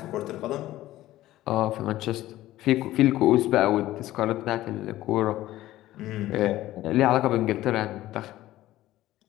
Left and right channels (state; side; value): quieter; right; 15.3 dB